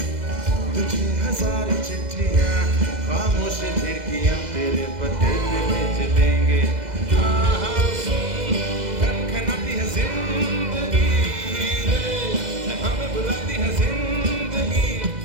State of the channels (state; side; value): late; left; 2.0 ms